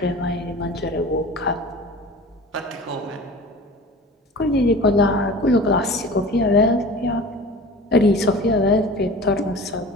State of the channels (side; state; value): both; normal; correlation 0.39